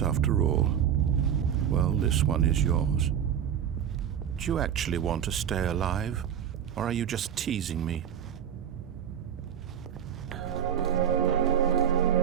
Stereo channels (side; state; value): left; quieter; 9.1 dB